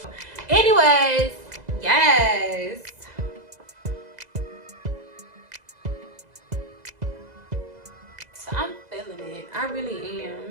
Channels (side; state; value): left; late; 2.0 ms